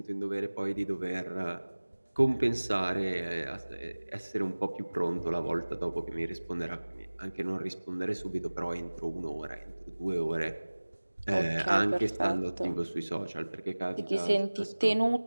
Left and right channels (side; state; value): both; inverted; correlation -1.00